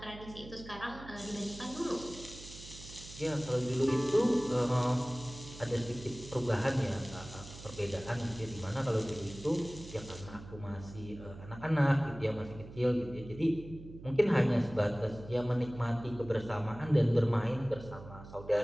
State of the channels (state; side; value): noise; right; hum, 15 dB below the sound